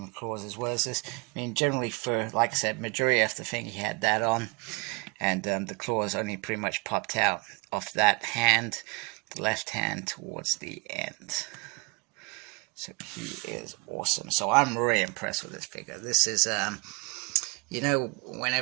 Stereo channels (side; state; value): left; quieter; 30.2 dB